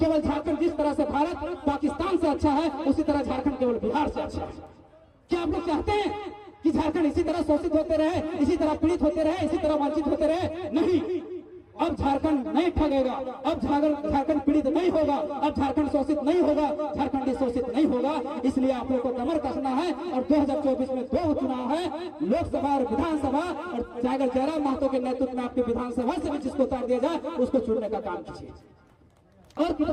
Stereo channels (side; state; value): both; identical; correlation 1.00